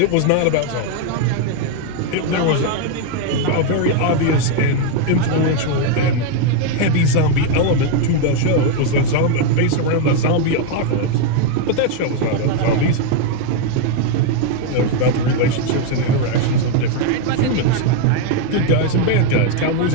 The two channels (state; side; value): different; both; correlation 0.01